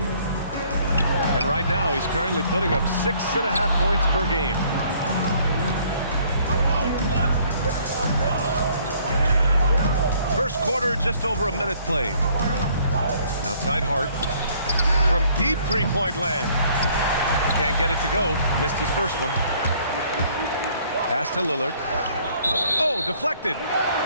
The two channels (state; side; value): inverted; both; correlation -0.61